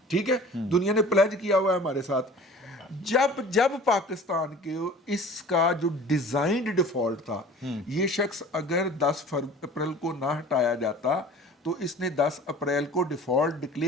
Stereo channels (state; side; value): normal; both; correlation 0.44